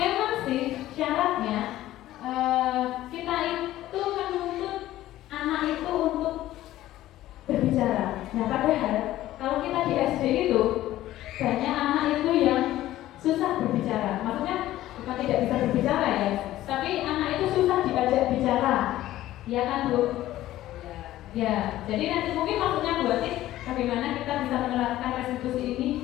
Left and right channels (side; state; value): right; quieter; 14.6 dB